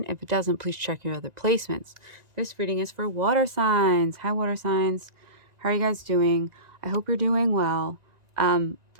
If it doesn't, please check your other placements. This reading is for water signs. Hi water signs. How are you guys doing? I hope you're doing well.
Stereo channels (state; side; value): late; left; 1.9 ms